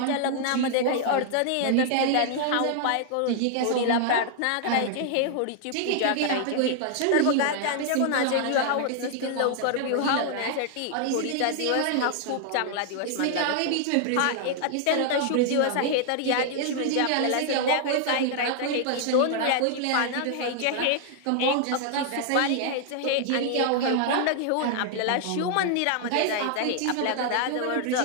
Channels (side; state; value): both; different; correlation 0.00